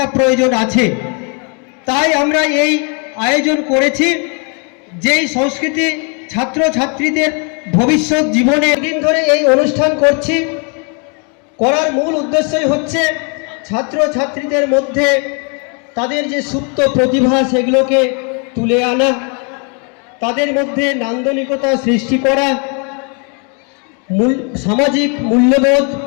প্রয়োজন আছে। তাই আমরা এই আয়োজন করেছি, যেই সংস্কৃতি ছাত্র ছাত্রীদের ভবিষ্যৎ জীবনে দিন ধরে এই অনুষ্ঠান করছি। করার মূল উদ্দেশ্যই হচ্ছে ছাত্র ছাত্রীদের মধ্যে তাদের যে সুপ্ত প্রতিভা সেগুলোকে তুলে আনা, তাদের মধ্যে নান্দনিকতা সৃষ্টি করা, সামাজিক মূল্যবোধ,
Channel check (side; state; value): right; quieter; 36.6 dB